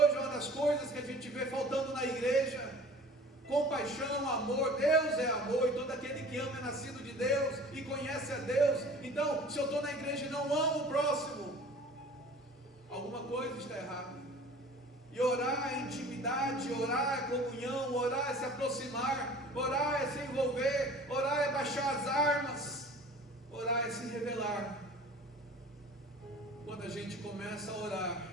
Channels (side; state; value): both; normal; correlation 0.44